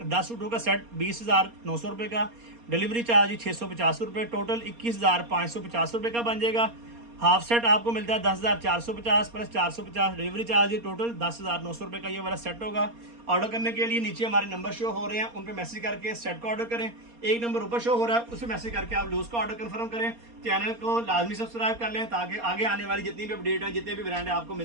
10 सूटों का सेट 20,900 रुपये का। डिलीवरी चार्ज 650 रुपये, टोटल 21,550 रुपये का बन जाएगा। हाफ सेट आपको मिलता है 10,450 प्लस 450 डिलीवरी चार्ज, टोटल 10,900 रुपये का ये वाला सेट होगा। ऑर्डर करने के लिए नीचे हमारे नंबर शो हो रहे हैं, उन पर मैसेज करके सेट का ऑर्डर करें। एक नंबर ऊपर शो हो रहा है, उस पर मैसेज करके आप लूज का ऑर्डर कंफर्म करें। चैनल को लाजमी सब्सक्राइब कर लें ताकि आगे आने वाली जितनी भी अपडेट है, जितने भी ब्रांड है आपको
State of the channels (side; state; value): left; late; 4.2 ms